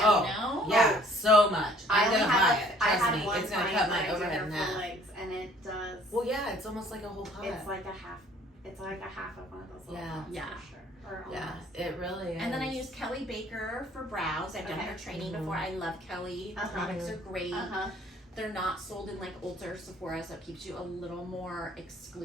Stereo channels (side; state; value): both; normal; correlation 0.57